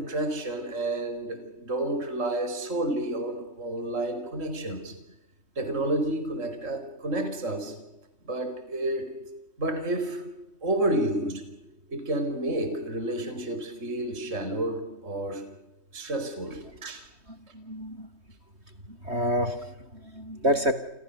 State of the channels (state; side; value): late; left; 3.2 ms